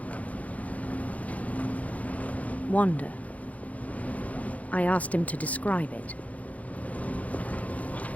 wander. I asked him to describe it.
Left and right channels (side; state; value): right; late; 0.069 ms